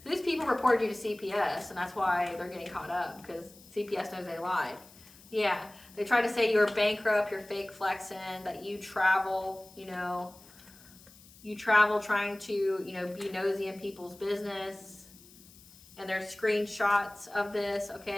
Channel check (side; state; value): left; noise; hiss, 23 dB below the sound